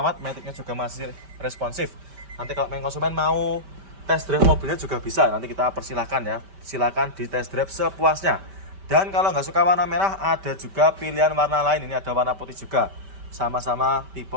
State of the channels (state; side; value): late; left; 5.1 ms